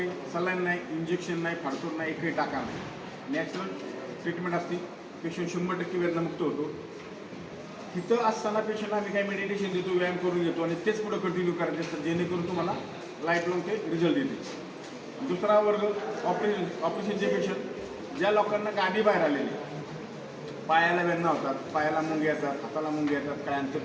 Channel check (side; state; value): both; identical; correlation 1.00